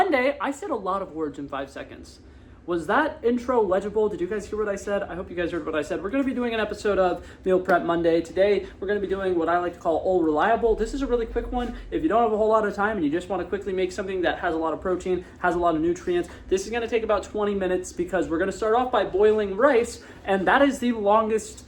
I said a lot of words in 5 seconds. Was that intro legible? Did you guys hear what I said? I hope you guys heard what I said. We're going to be doing an episode of Meal Prep Monday. Today, we're going to be doing what I like to call all reliable. This is a really quick one. If you don't have a whole lot of time and you just want to quickly make something that has a lot of protein, has a lot of nutrients, this is going to take about 20 minutes because we're going to start off by boiling rice, and that is the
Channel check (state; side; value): identical; both; correlation 1.00